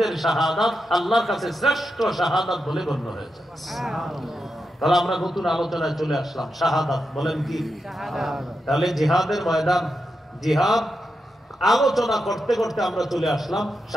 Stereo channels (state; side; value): normal; both; correlation 0.87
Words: শাহাদাত আল্লাহর কাছে শ্রেষ্ঠ শাহাদাত বলে গণ্য হয়েছে। তাহলে আমরা নতুন আলোচনায় চলে আসলাম, শাহাদাত বলেন কি? তাহলে জিহাদের ময়দান, জিহাদ আলোচনা করতে করতে আমরা চলে আসলাম